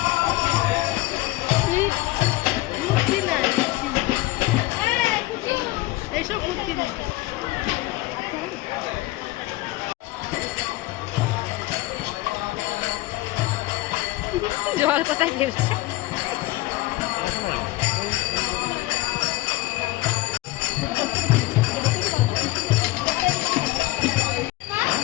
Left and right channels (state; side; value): quieter; right; 19.0 dB